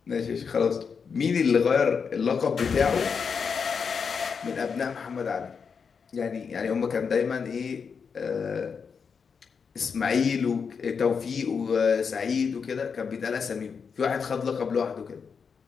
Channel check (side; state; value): right; quieter; 6.0 dB